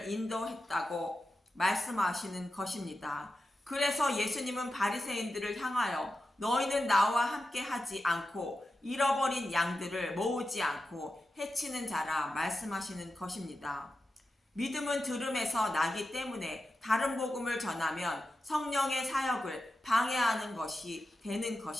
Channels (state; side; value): normal; both; correlation 0.91